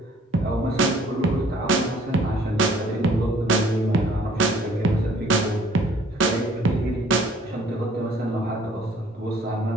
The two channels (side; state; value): both; normal; correlation 0.58